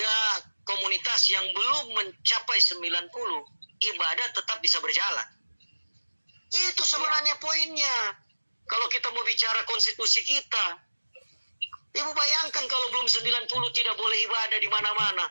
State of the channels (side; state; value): both; inverted; correlation -1.00